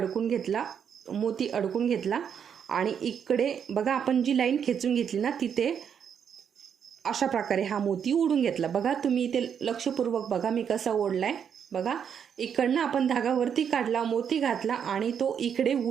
घेतला, मोती अडकून घेतला आणि इकडे बघा आपण जी लाईन खेचून घेतली ना तिथे अशा प्रकारे हा मोती ओढून घेतला. बघा तुम्ही इथे लक्षपूर्वक बघा मी कसा ओढलाय. बघा इकडनं आपण धागा वरती काढला, मोती घातला आणि तो इकडे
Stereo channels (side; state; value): left; quieter; 7.8 dB